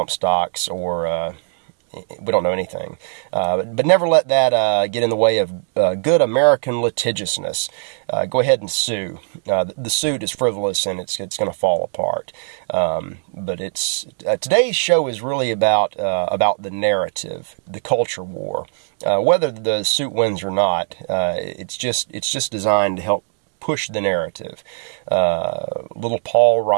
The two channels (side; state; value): left; silent; digital silence